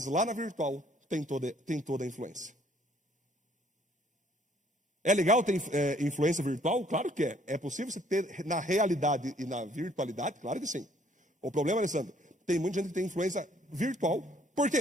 lá na virtual tem toda a influência. É legal ter influência virtual? Claro que é. É possível você ter na realidade e na virtualidade? Claro que sim. O problema, Alessandro, tem muita gente que tem influência virtual. Por quê?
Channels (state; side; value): normal; both; correlation 0.62